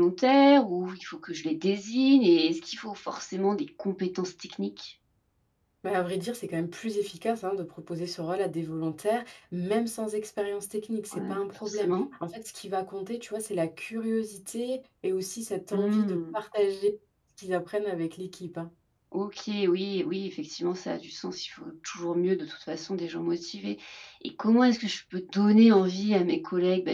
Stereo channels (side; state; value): both; identical; correlation 1.00